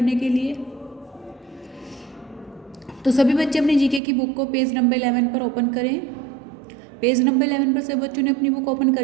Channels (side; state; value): left; drops out; at 4.0 s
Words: के लिए? तो सभी बच्चे अपनी जीके की बुक को पेज नंबर 11 पर ओपन करें। पेज नंबर 11 पर सभी बच्चों ने अपनी बुक ओपन कर